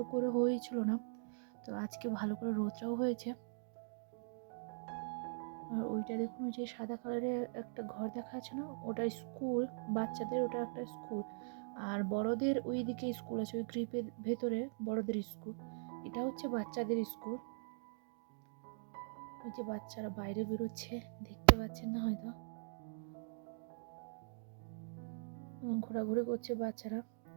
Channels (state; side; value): silent; left; digital silence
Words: করে হয়েছিল না। তো আজকে ভালো করে রোদটাও হয়েছে। আর ওইটা দেখুন, ওই যে সাদা কালারের একটা ঘর দেখা যাচ্ছে না, ওটা স্কুল বাচ্চাদের, ওটা একটা স্কুল। আর বড়দের ওই দিকে স্কুল আছে, ওই গ্রিপের ভেতরে বড়দের স্কুল, এটা হচ্ছে বাচ্চাদের স্কুল। ওই যে বাচ্চারা বাইরে বেরোচ্ছে, দেখতে পাচ্ছেন না হয়তো, ঘোরাঘুরি করছে বাচ্চারা।